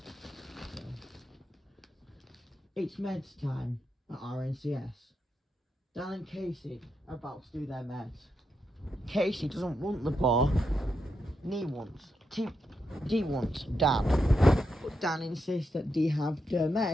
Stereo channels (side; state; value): both; normal; correlation 0.83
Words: It's meds time at RNCS. Dan and Casey are about to do their meds. Casey doesn't want the bar. D wants Dan. But Dan insists that D have the